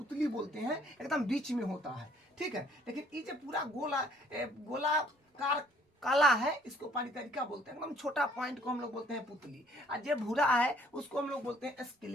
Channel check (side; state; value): both; normal; correlation 0.61